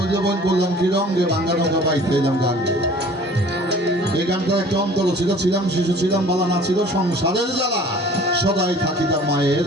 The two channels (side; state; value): both; normal; correlation 0.48